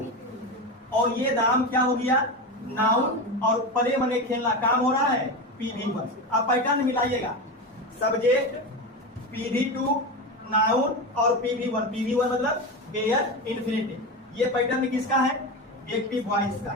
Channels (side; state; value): both; normal; correlation 0.20